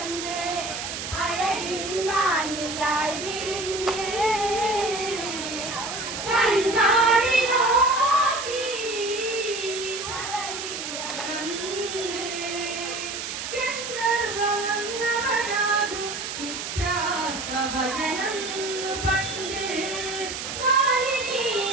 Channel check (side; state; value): right; noise; hiss, 6 dB below the sound